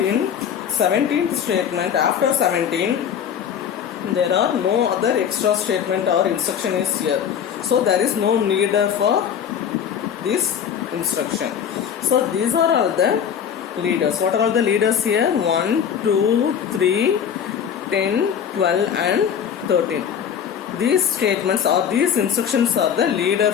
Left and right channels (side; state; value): right; quieter; 8.3 dB